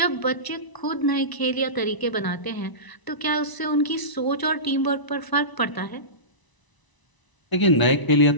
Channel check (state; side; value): late; right; 1.0 ms